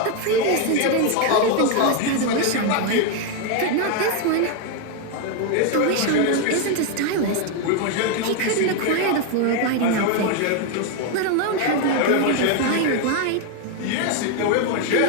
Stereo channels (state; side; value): different; both; correlation 0.01